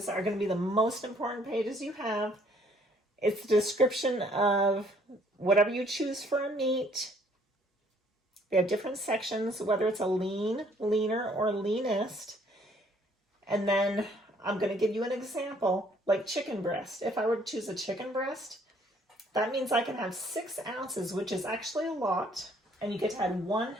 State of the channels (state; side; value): normal; both; correlation 0.62